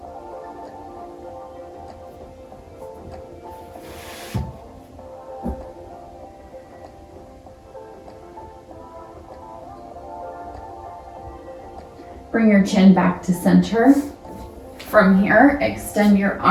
Bring your chin back to center. From here, extend your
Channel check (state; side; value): identical; both; correlation 1.00